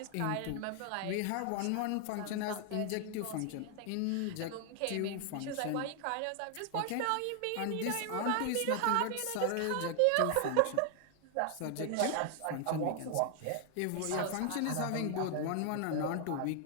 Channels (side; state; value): both; different; correlation 0.00